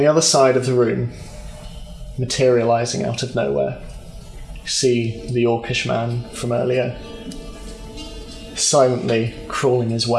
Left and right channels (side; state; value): both; identical; correlation 1.00